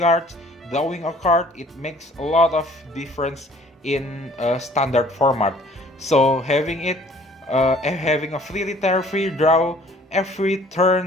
drawing a card, it makes a lot of difference in standard format. So having a free retire, free draw every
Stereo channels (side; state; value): both; normal; correlation 0.55